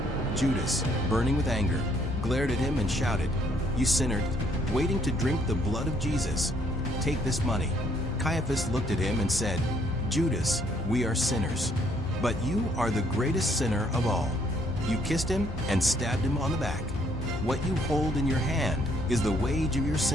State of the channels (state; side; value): normal; both; correlation 0.67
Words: Judas, burning with anger, glared at him and shouted, "You sinner, waiting to drink the blood of Jesus. Take this money." Caiaphas looked at him and said, "Judas, we are sinners, but you are the greatest sinner of all. You kissed him and stabbed him on the back. What you hold in your hand is the wage of your